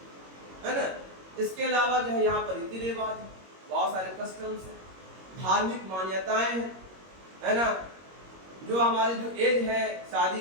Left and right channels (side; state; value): left; late; 21 ms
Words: है ना। इसके अलावा जो है यहाँ पर रीति रिवाज है, बहुत सारे कस्टम्स है, धार्मिक मान्यताएं हैं, है ना। जो हमारी जो एज है, शादी